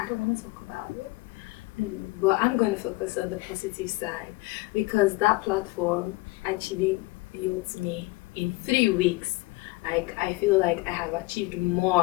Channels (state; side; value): quieter; right; 22.9 dB